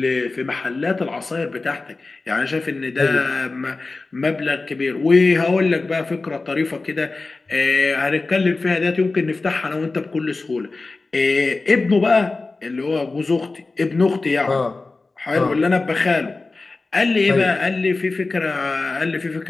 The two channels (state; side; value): quieter; right; 3.6 dB